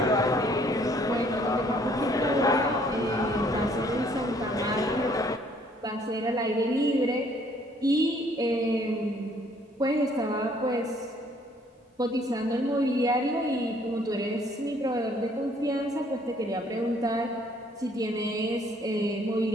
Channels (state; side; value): normal; both; correlation 0.62